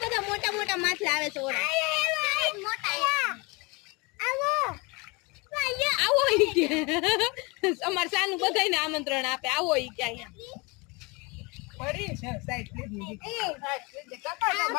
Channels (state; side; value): quieter; right; 27.5 dB